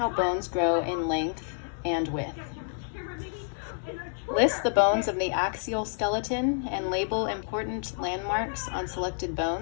bones grow in length and width. List the bones of the axial skeleton and label important landmarks on selected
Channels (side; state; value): right; silent; digital silence